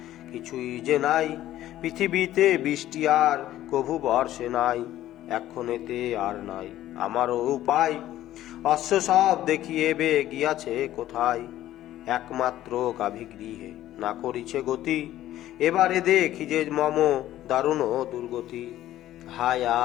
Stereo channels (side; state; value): right; quieter; 13.6 dB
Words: কিছুই যে নাই, পৃথিবীতে বৃষ্টি আর কভু বর্ষে নাই। এক্ষণেতে আর নাই আমারও উপায়, অশ্ব সব দেখিয়েবে গিয়াছে কোথায়। একমাত্র গাভী গৃহে না করিছে গতি, এবারে দেখি যে মম দারুণ দুর্গতি। হায়